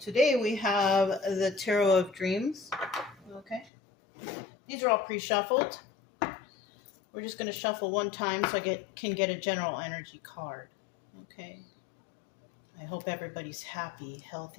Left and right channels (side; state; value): right; drops out; at 3.7 s